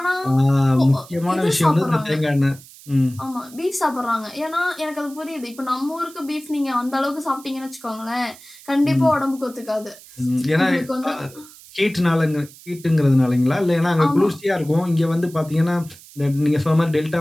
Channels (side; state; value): right; noise; hiss, 21 dB below the sound